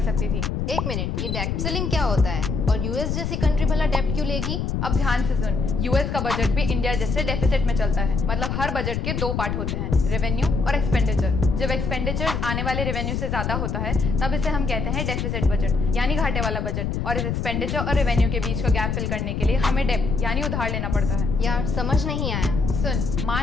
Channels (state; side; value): noise; left; rumble, 1 dB below the sound